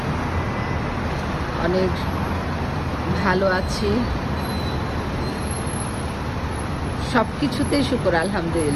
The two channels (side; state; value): both; identical; correlation 1.00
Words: অনেক ভালো আছি, সব কিছুতেই শুকর